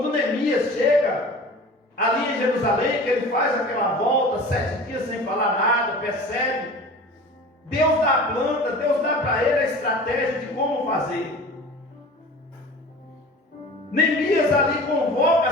Neemias chega ali em Jerusalém, que ele faz aquela volta, 7 dias sem falar nada, percebe, Deus dá a planta, Deus dá para ele a estratégia de como fazer. Neemias ali convoca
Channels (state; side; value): normal; both; correlation 0.40